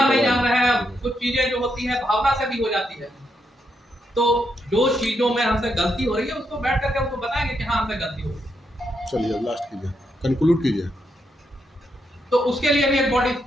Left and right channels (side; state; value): both; normal; correlation 0.80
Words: नहीं जान रहे हैं। कुछ चीजें जो होती है भावना से भी हो जाती है, तो जो चीजों में हमसे गलती हो रही है उसको बैठ करके उनको बताएंगे कि हाँ हमसे गलती हो रही है। चलिए लास्ट कीजिए, कंक्लूड कीजिए। तो उसके लिए भी एक बॉडी